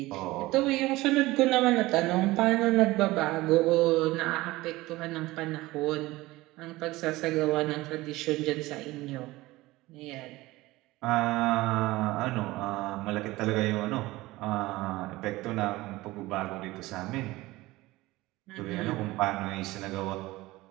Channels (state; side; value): quieter; left; 19.2 dB